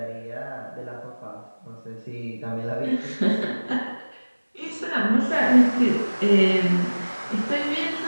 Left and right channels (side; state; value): both; inverted; correlation -1.00